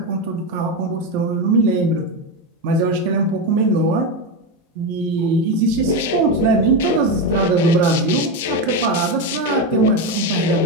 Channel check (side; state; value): both; normal; correlation 0.12